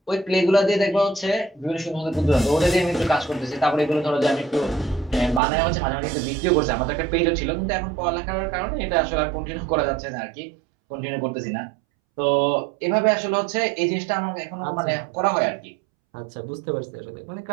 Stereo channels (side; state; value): left; drops out; at 5.4 s